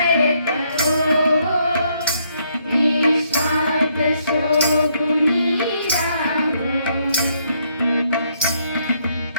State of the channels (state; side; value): inverted; both; correlation -0.72